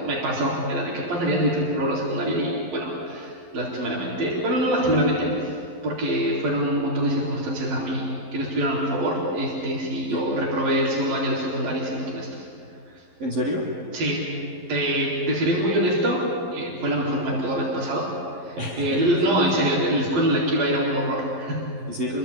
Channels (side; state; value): left; late; 11 ms